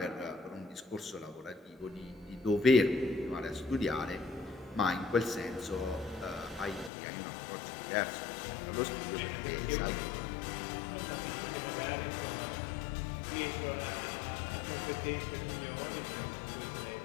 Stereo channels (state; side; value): drops out; right; at 6.9 s